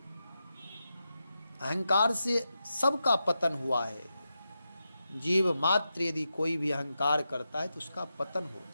अहंकार से सबका पतन हुआ है। जीव मात्र यदि कोई भी अहंकार करता है तो उसका पतन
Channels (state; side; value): inverted; both; correlation -0.89